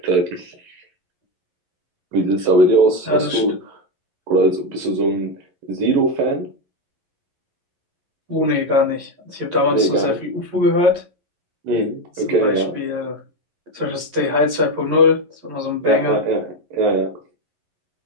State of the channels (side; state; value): left; late; 11 ms